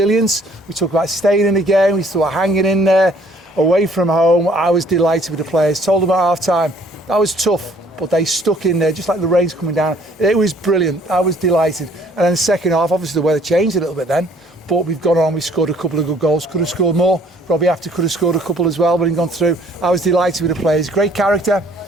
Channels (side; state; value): both; normal; correlation 0.59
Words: We talked about staying in the game. We talked about hanging in there. Away from home, I was delighted with the players. Told them at half-time, that was tough, but they stuck in there, just like the rain's coming down. It was brilliant. I was delighted. And then the second half, obviously the weather changed a little bit then, but we've gone on, we scored a couple of good goals. Could have scored more. 𝗬𝗢𝗡𝗡𝗘𝗥 could have scored a couple as well, but he gone through. I was delighted with the players. Great character,